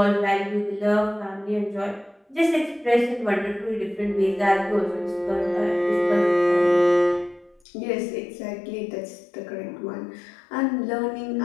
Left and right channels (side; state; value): right; drops out; at 7.6 s